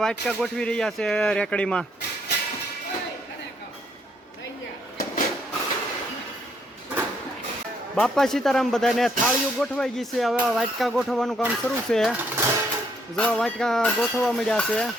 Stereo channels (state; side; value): normal; both; correlation 0.71